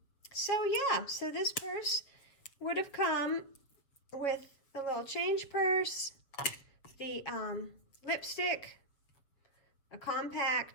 So this purse would have come with the little change purse, the lipstick, a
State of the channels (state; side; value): late; right; 7.0 ms